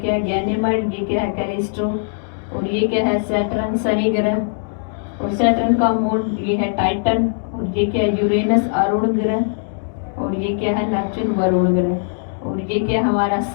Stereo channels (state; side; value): silent; right; digital silence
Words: है? गैनेमाइड। ये क्या है? कैलिस्टो। और ये क्या है? सैटर्न, शनि ग्रह। और सैटर्न का मून ये है टाइटन। और ये क्या है? यूरेनस, अरुण ग्रह। और ये क्या है? नेपच्यून, वरुण ग्रह। और ये क्या है? हमारा